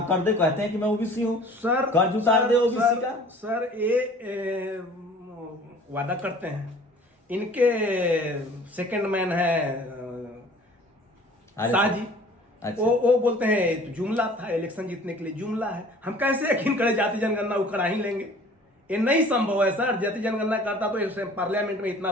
कर दे, कहते हैं कि मैं ओबीसी हूँ, सर कर्ज उतार दे ओबीसी का। सर ये वादा करते हैं, इनके सेकंड मैन है शाह जी। अच्छा। वो बोलते हैं तो जुमला था, इलेक्शन जीतने के लिए जुमला है। हम कैसे यकीन करें जाति जनगणना वो करा ही लेंगे? ये नहीं संभव है सर। जाति जनगणना करता तो पार्लियामेंट में इतना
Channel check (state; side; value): normal; both; correlation 0.49